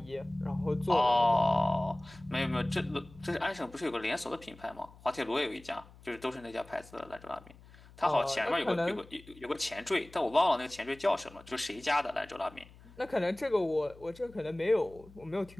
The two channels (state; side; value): noise; left; hum, 22 dB below the sound